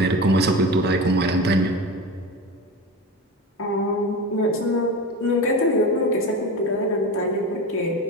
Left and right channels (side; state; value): both; normal; correlation 0.27